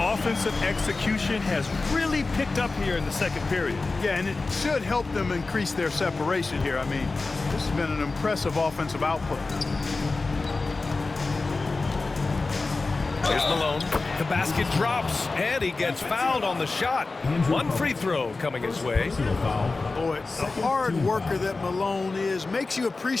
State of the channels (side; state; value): right; quieter; 3.7 dB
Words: execution has really picked up here in the second period. Yeah, and it should help them increase their separation here. I mean, this has been an impressive offensive output. Here's Malone. The basket drops, and he gets fouled on the shot. One free throw coming his way. Boy, the hard worker that Malone is makes you